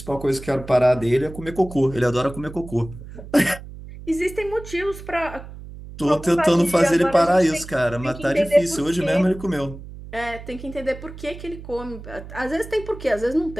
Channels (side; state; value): right; noise; hum, 14 dB below the sound